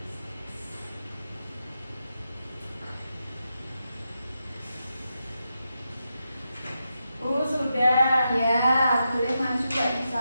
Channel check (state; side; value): inverted; both; correlation -0.87